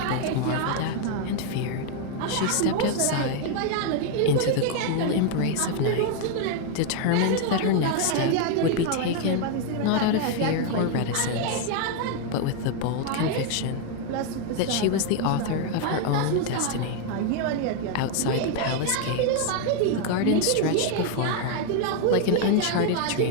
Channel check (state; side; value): different; both; correlation 0.01